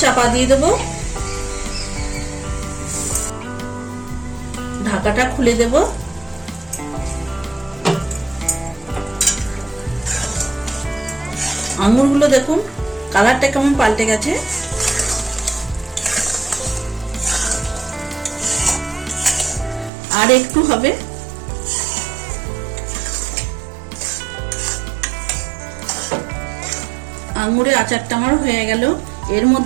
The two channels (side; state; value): left; drops out; at 19.9 s